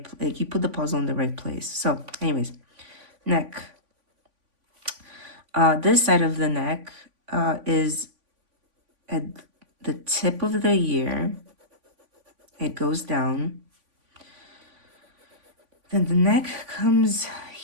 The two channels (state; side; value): late; left; 3.5 ms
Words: like you put the puzzle in the right place. So anyways, neck. This side of the neck is at the tip of the ear. It goes down. Then the neck comes